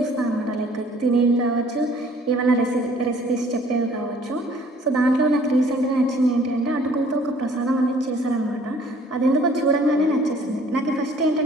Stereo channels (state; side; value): normal; both; correlation 0.56